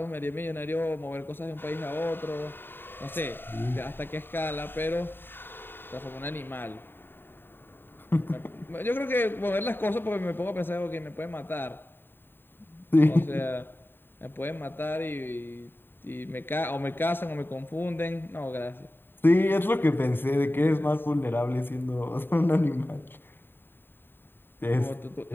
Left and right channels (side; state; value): right; late; 0.098 ms